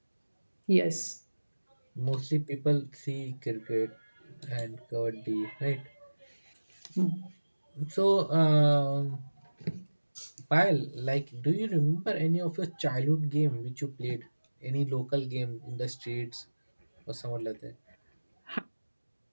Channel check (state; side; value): inverted; both; correlation -1.00